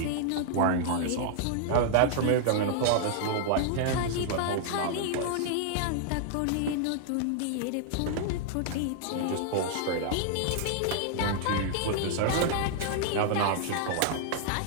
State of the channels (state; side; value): different; both; correlation -0.01